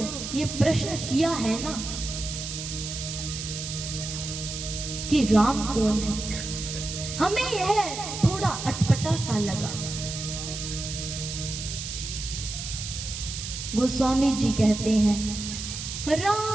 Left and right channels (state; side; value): noise; right; hiss, 7 dB below the sound